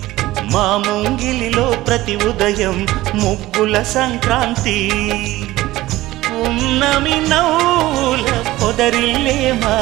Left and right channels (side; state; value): left; quieter; 17.1 dB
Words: మా ముంగిలిలో ప్రతి ఉదయం ముగ్గుల సంక్రాంతి ఉన్నమి నవ్వుల పొదరిల్లే